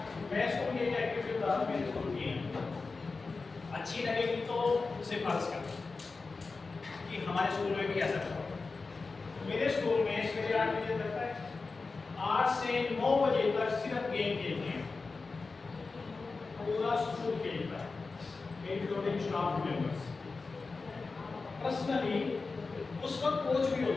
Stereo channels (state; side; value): quieter; right; 4.1 dB